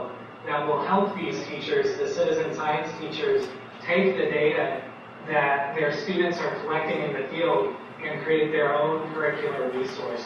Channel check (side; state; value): both; identical; correlation 1.00